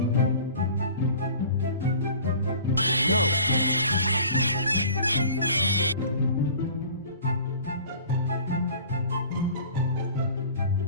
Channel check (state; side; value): inverted; both; correlation -0.45